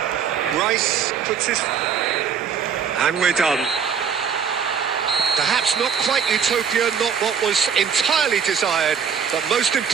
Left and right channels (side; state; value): left; quieter; 7.0 dB